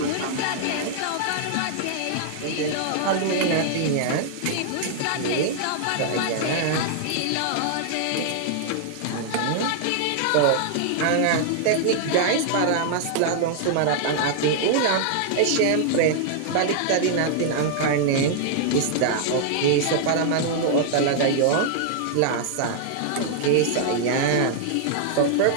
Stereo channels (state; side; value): different; both; correlation -0.01